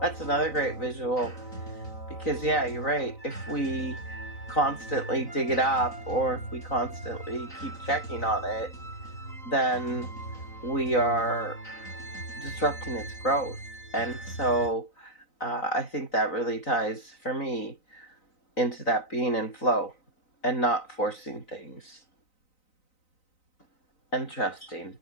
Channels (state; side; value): late; right; 3.9 ms